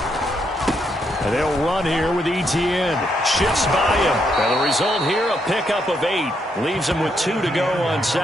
And they'll run here with ETN. Shifts by him. And the result here, a pickup of 8. Leaves him with 2 to go on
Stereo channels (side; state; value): both; normal; correlation 0.77